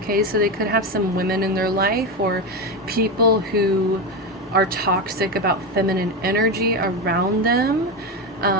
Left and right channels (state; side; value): normal; both; correlation 0.15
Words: so they could have some women in their life or people who are toxic about feminine energy around them.